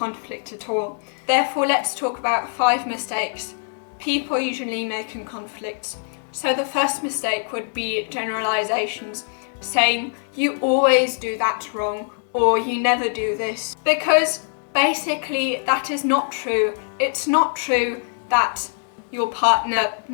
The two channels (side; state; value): right; silent; 64 dB below the other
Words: at all. Therefore, let's talk about 5 mistakes people usually make in conflicts. So the first mistake would be generalisations, saying you always do that wrong or you never do this. Because basically that is not true. It's not true that your partner